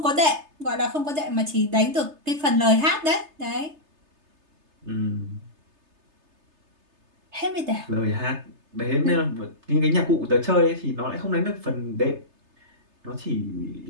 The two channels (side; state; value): left; late; 3.3 ms